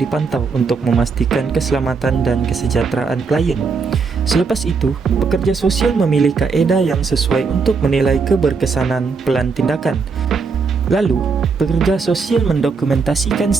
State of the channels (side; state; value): left; quieter; 4.9 dB